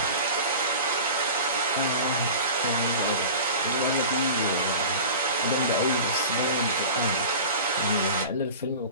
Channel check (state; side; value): inverted; both; correlation -0.35